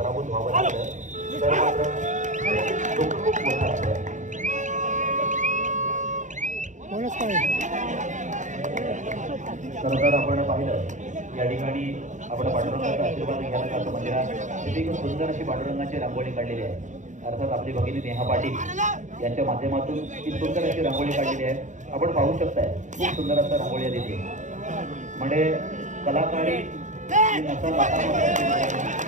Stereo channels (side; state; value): left; late; 0.36 ms